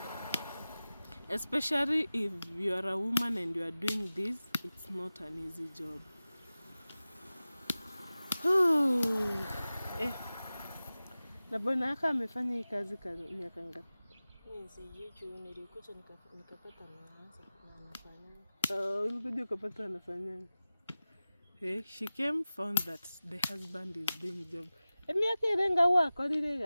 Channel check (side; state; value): both; inverted; correlation -0.96